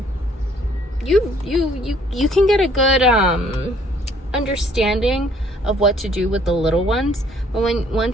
can get a good understanding of what to do with the little ones. But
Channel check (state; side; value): normal; both; correlation 0.61